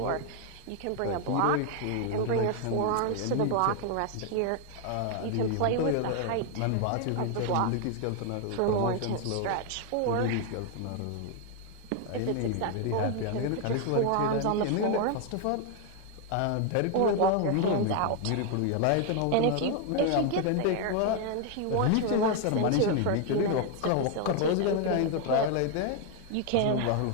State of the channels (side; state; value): both; different; correlation 0.00